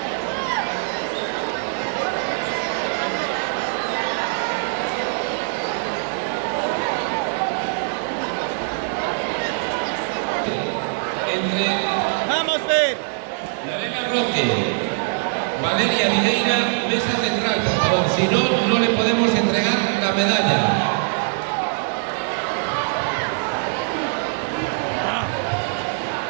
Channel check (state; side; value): silent; left; 64 dB below the other